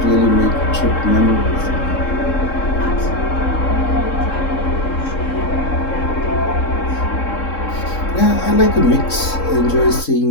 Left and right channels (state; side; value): late; right; 3.7 ms